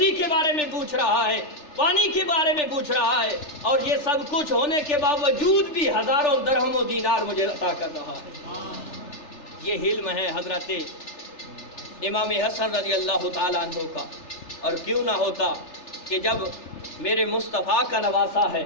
کے بارے میں پوچھ رہا ہے، پانی کے بارے میں پوچھ رہا ہے، اور یہ سب کچھ ہونے کے باوجود بھی ہزاروں درہم و دینار مجھے عطا کر رہا ہے۔ یہ علم ہے حضرت امام حسن رضی اللہ تعالیٰ عنہ کا۔ اور کیوں نہ ہوتا کہ جب میرے مصطفیٰ کا نواسا ہے،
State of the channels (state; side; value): late; right; 3.4 ms